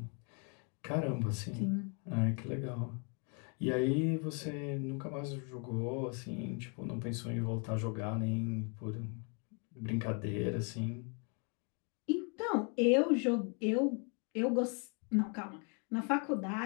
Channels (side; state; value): right; quieter; 37.9 dB